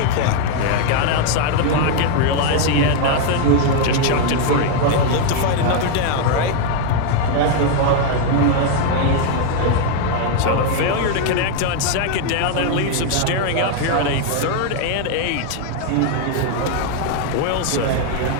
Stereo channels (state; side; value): different; both; correlation 0.00